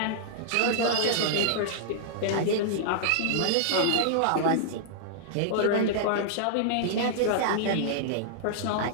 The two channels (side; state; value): both; different; correlation -0.01